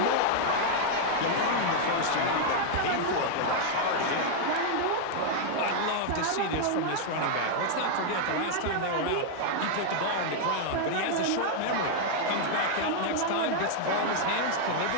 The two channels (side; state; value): both; different; correlation 0.00